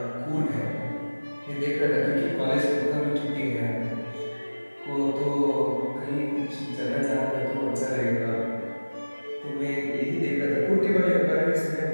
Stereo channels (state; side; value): inverted; both; correlation -1.00